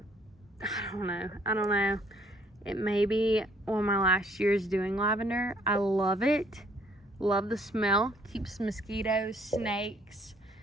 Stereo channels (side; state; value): both; normal; correlation 0.63